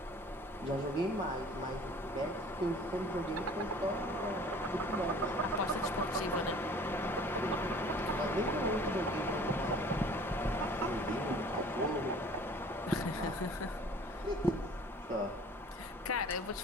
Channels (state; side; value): normal; both; correlation 0.49